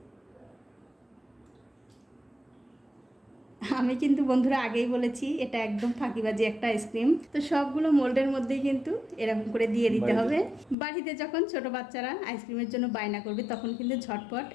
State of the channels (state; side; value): drops out; right; at 10.8 s